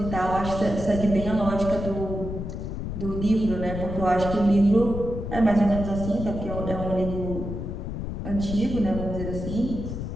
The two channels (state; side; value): noise; left; rumble, 6 dB below the sound